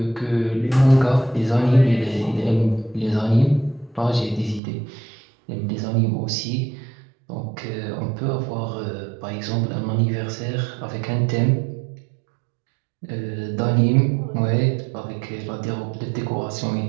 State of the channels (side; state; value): left; drops out; at 4.6 s